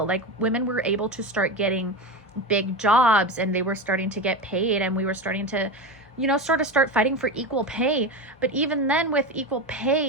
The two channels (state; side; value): normal; both; correlation 0.21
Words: Women were able to start getting big jobs, and they were starting to get paid, and we were starting to start fighting for equal pay. But even then, with equal